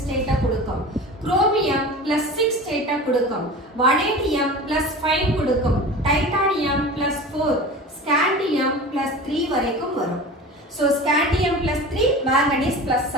ஸ்டேட்டை கொடுக்கும், குரோமியம் +6 ஸ்டேட்டை கொடுக்கும், வனேடியம் +5 கொடுக்கும், டைட்டானியம் +4, ஸ்காண்டியம் +3 வரைக்கும் வரும். So scandium +3, manganese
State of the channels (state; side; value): normal; both; correlation 0.35